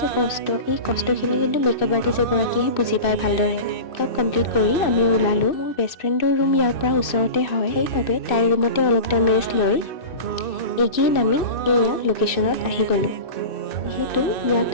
কষ্ট, এই কষ্টখিনি কিন্তু মেকআপ আৰ্টিষ্ট এগৰাকীয়েহে বুজি পায় ভালদৰে। মেকআপ কমপ্লিট কৰি আমি ওলালোঁ। মোৰ বেষ্ট ফ্ৰেণ্ডৰ ৰুম ইয়াৰ পৰা ওচৰতে হয়, সেইবাবে তাইৰ ৰুমতে অলপ টাইম ৰেষ্ট লৈ এগেইন আমি এয়া লোকেশ্যনত আহি গ'লোঁ। যিহেতু ইয়াত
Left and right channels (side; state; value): right; late; 2.6 ms